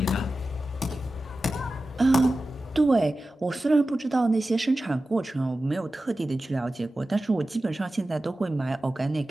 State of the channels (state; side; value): normal; both; correlation 0.94